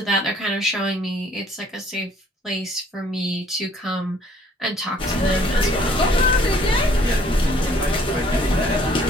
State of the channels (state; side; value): normal; both; correlation 0.60